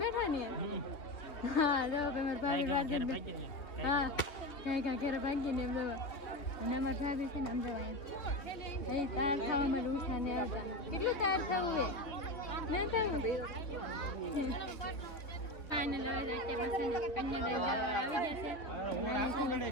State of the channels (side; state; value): right; late; 3.4 ms